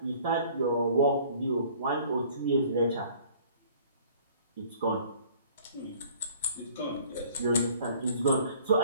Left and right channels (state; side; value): inverted; both; correlation -0.53